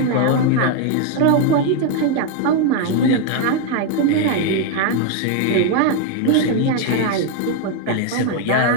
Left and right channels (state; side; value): different; both; correlation 0.01